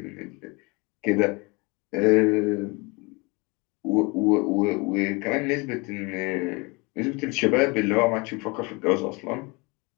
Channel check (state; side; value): quieter; right; 27.6 dB